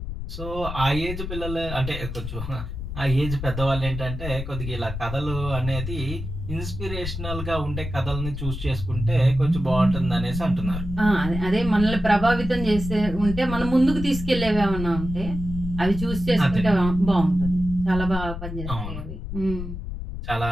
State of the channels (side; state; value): left; noise; rumble, 7 dB below the sound